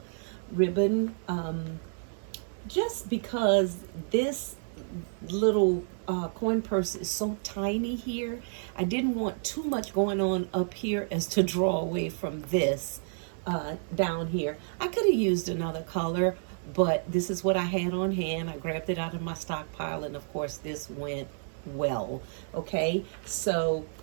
ribbon. Just because this little coin purse is so tiny here, I didn't want too much going on up here as to draw away from this down here. I could have used another color, but this is what I had on hand. I grabbed it out of my stockpile, and of course this went well. Okay, so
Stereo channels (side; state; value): left; silent; 57 dB below the other